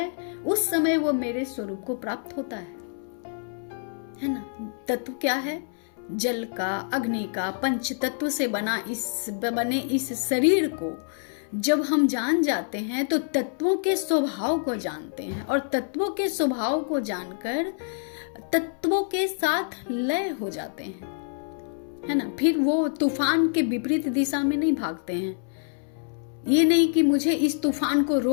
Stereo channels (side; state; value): right; silent; 61 dB below the other